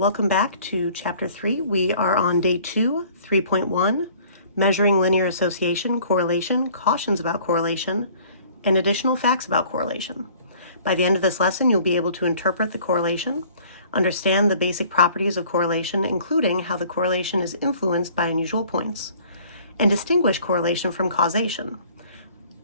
back to Chapter 3. We are on Day 2, 3.1, Measuring Linear Association, Correlation, Cautions about Correlation, and Additional Facts about Correlation. By the end of this lesson, you'll be able to interpret the correlation, understand the basic properties of correlation, including how the correlation is influenced by unusual points, and distinguish correlation from causation.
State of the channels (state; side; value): inverted; both; correlation -0.53